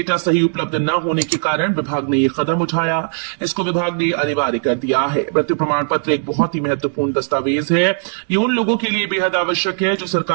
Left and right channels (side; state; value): left; silent; digital silence